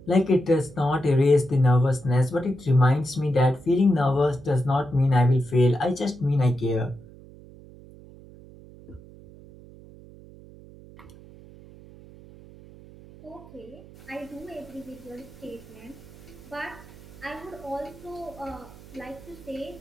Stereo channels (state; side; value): noise; right; hum, 20 dB below the sound